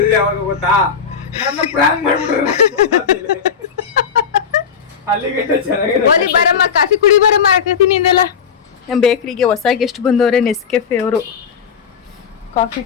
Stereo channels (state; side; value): quieter; right; 6.7 dB